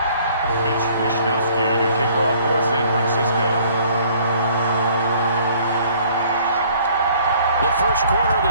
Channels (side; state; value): both; inverted; correlation -0.57